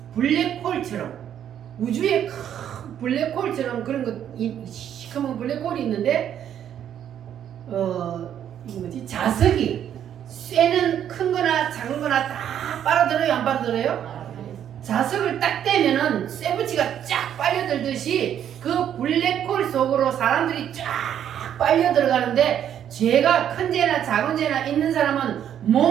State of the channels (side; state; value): left; quieter; 9.8 dB